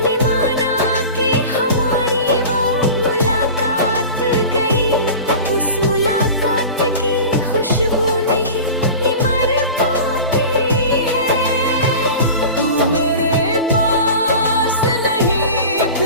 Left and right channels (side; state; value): both; inverted; correlation -0.35